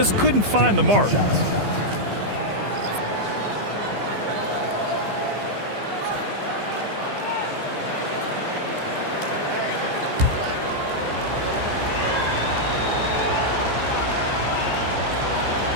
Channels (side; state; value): left; late; 15 ms